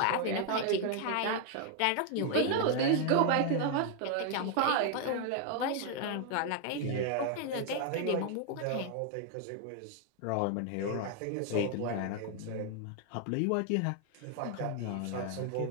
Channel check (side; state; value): both; different; correlation 0.00